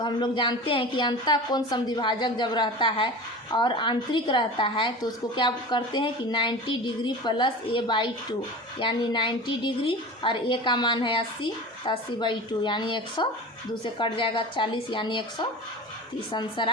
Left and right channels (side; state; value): both; normal; correlation 0.33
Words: हम लोग जानते हैं कि अंतः कोण समद्विभाजक जब रहता है और आंतरिक रहता है तो उसको क्या करते हैं कि 90 डिग्री प्लस A/2 यानी 90 डिग्री और A का मान है 80 तो 80/2 यानी 100, 2 से कट जाएगा 40 यानी 130 आंसर